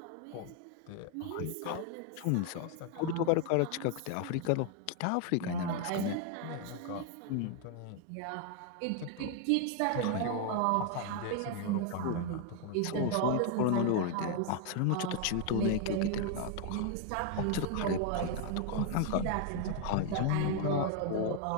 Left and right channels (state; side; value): different; both; correlation 0.00